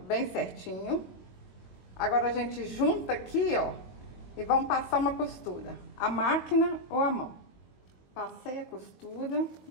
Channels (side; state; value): right; late; 22 ms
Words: bem certinho. Agora a gente junta aqui, ó, e vamos passar uma costura, a máquina ou a mão. Passei a costura,